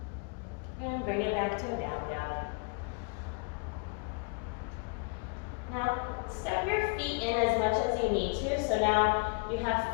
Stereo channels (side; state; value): right; quieter; 34.9 dB